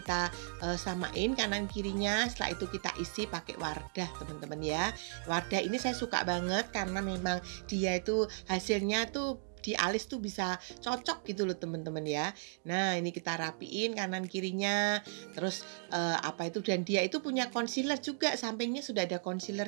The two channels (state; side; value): silent; left; digital silence